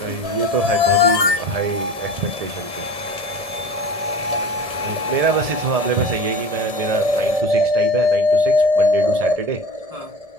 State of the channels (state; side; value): late; left; 1.7 ms